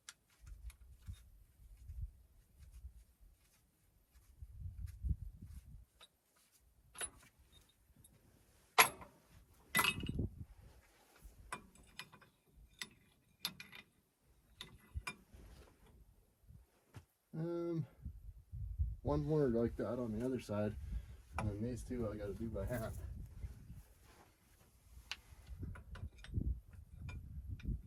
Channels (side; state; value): both; identical; correlation 1.00